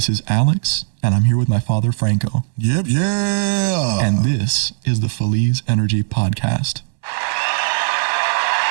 is Alex, and I'm here with my father, Franco. Yep, yeah. And this is the Feliz Energy Podcast.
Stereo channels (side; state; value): left; silent; digital silence